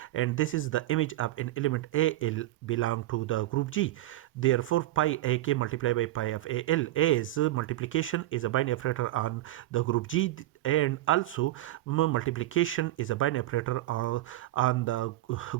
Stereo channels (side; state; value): left; quieter; 16.0 dB